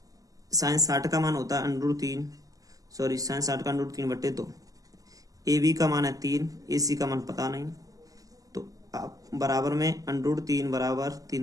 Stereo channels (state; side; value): late; left; 0.17 ms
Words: साइन 60 का मान होता है √3, सॉरी साइन 60 का √3 बट्टे 2। ए बी का मान है 3, ए सी का मान पता नहीं, तो आप बराबर में √3 बराबर 3